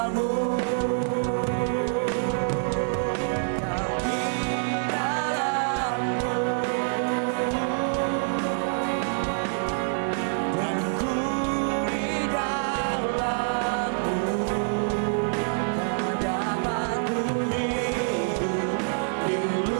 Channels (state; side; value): silent; left; 61 dB below the other